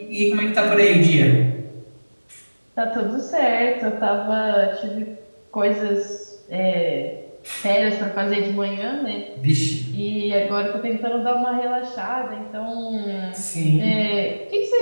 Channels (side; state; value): both; inverted; correlation -1.00